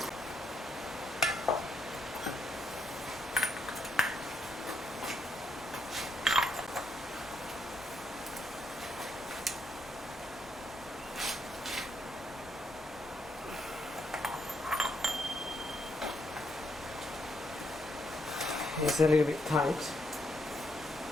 It's a little bit tight.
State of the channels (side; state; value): both; normal; correlation 0.77